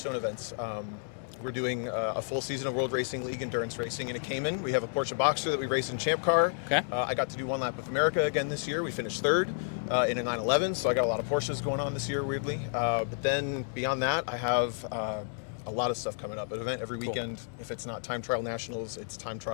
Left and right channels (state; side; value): silent; right; digital silence